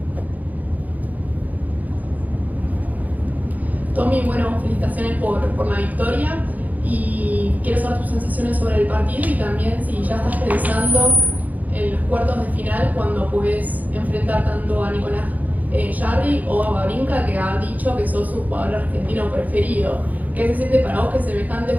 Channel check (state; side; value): late; left; 0.079 ms